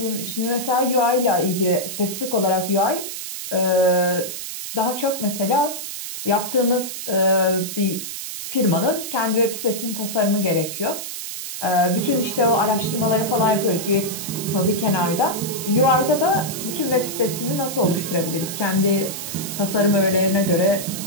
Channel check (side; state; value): right; noise; hiss, 7 dB below the sound